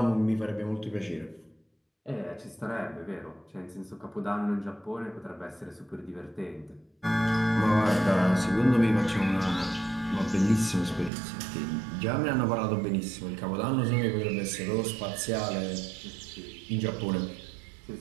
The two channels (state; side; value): drops out; left; at 11.1 s